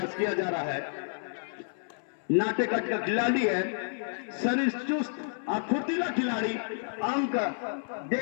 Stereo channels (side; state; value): right; silent; 58 dB below the other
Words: किया जा रहा है। नाटेकट का खिलाड़ी है, शरीर चुस्त और फुर्तीला खिलाड़ी, अंक